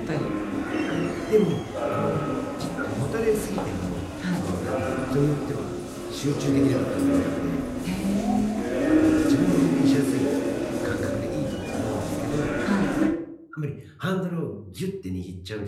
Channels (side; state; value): both; identical; correlation 1.00